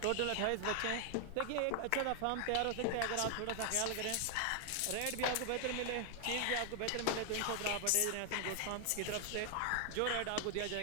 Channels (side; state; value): both; different; correlation 0.00